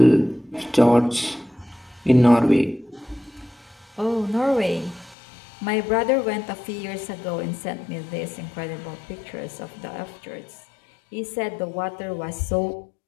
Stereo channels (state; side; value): drops out; right; at 5.2 s